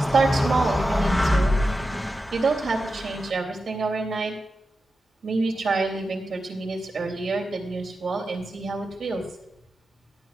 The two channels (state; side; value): normal; both; correlation 0.91